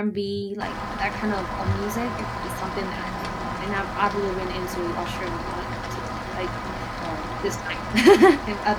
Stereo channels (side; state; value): both; identical; correlation 1.00